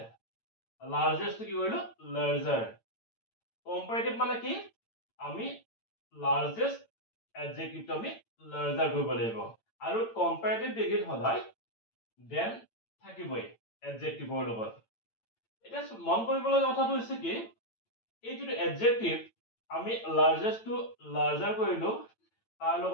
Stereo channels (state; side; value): late; right; 8.9 ms